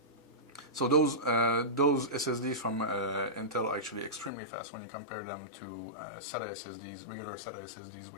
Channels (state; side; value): drops out; right; at 4.3 s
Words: So those SSDs from Intel are actually extremely fast when you compare them to SATA SSDs, regular SATA SSDs,